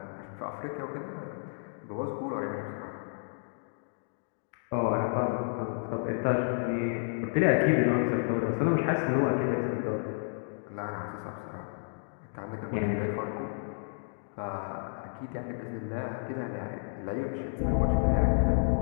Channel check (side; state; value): right; silent; digital silence